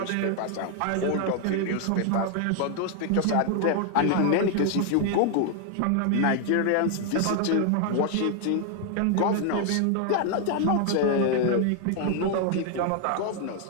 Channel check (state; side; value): different; both; correlation 0.00